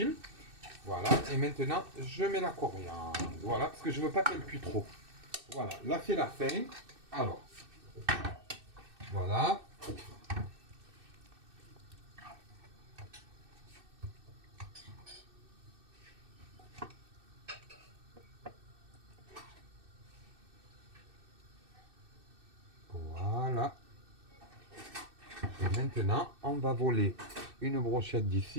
Voilà, et maintenant je mets la coriandre. Voilà, parce que je veux pas qu'elle cuise trop. Voilà, là c'est la fin. Alors, voilà. Voilà. Et maintenant, on va voler une brochette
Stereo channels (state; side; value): late; left; 2.6 ms